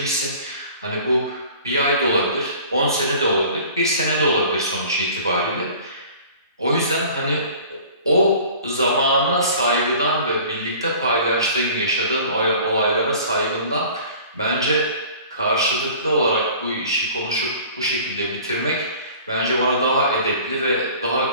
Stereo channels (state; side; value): inverted; both; correlation -0.46